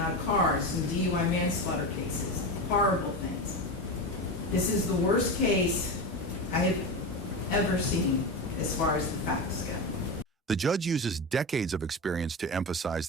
cars, some DUI manslaughter cases, horrible things. This is the worst case I have ever seen as far as the facts go. The judge uses decades of experience to emphasize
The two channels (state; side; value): normal; both; correlation 0.20